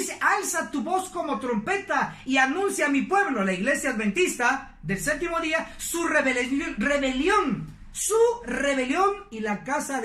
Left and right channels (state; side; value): identical; both; correlation 1.00